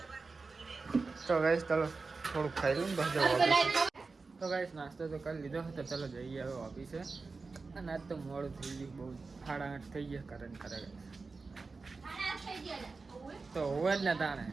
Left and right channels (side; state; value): left; quieter; 4.1 dB